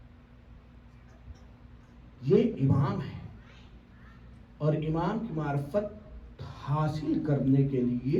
یہ امام ہے اور امام کی معرفت حاصل کرنے کے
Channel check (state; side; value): identical; both; correlation 1.00